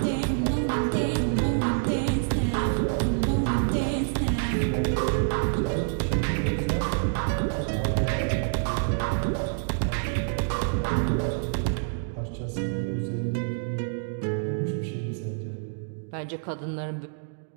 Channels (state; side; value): silent; left; digital silence